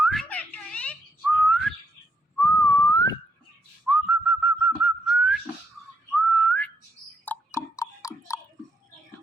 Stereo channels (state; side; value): normal; both; correlation 0.77